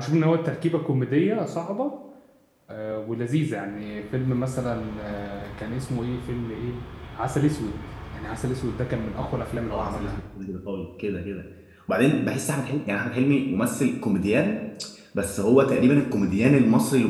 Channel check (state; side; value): identical; both; correlation 1.00